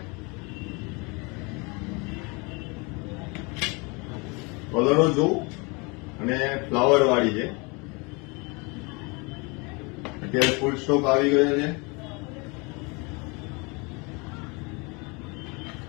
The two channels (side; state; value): right; quieter; 29.4 dB